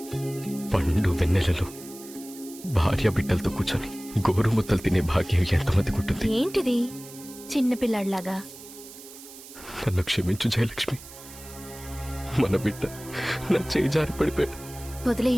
పండు వెన్నెలలో భార్య బిడ్డలతో కూర్చొని గోరుముద్దలు తినే భాగ్యం ఎంతమందికి ఉంటుంది? ఏంటిది చిన్నపిల్లాడిలాగా? నన్ను క్షమించు జయలక్ష్మి. మన బిడ్డ నా చేయి జారి పడిపోయాడు.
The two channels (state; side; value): noise; right; hiss, 17 dB below the sound